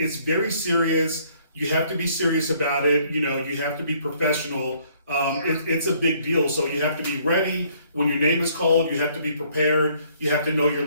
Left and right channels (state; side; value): inverted; both; correlation -0.63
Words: very serious. You have to be serious about it. You have to be professional. yeah, It's a big deal. So you have to be ready when your name is called. You have to be prepared. You have to know your